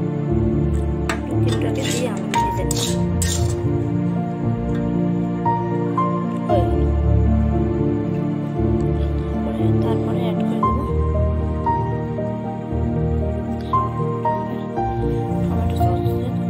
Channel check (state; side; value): identical; both; correlation 1.00